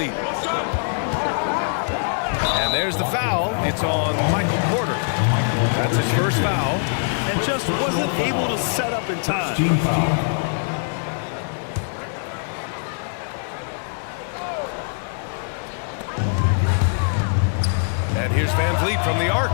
And there's the foul. It's on Michael Porter. That's his first foul. And just wasn't able to set up in time. Team foul. And here's Van Vliet from the arc.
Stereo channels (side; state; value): right; silent; digital silence